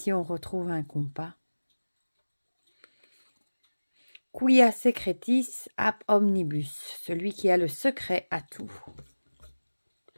on retrouve un compas. Quia secretis ap omnibus, celui qui a le secret à tout.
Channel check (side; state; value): both; inverted; correlation -1.00